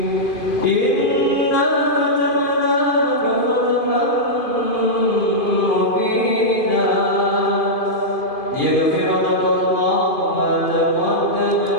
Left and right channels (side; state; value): right; late; 2.5 ms